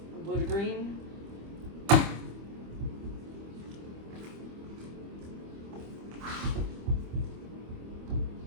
from blue to green.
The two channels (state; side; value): late; left; 25 ms